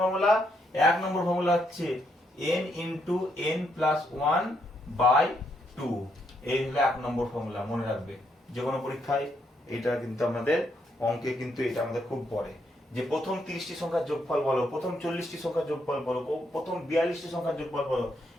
ফর্মুলা 1 নম্বর ফর্মুলা হচ্ছে n ইন্টু n প্লাস 1/2, এই হলো 1 নম্বর ফর্মুলা, মনে রাখবে। যে কোনো পরীক্ষায় এটা কিন্তু আমাদের অঙ্কে কিন্তু এটা আমাদের খুব পড়ে, যে প্রথম 30টি সংখ্যার যোগফল বলো, প্রথম 40টি সংখ্যার যোগফল বলো, প্রথম 42টি সংখ্যার যোগফল বলো,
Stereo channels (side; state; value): both; normal; correlation 0.76